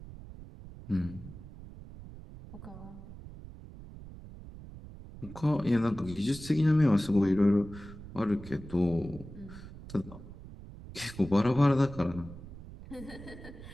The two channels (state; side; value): noise; right; rumble, 15 dB below the sound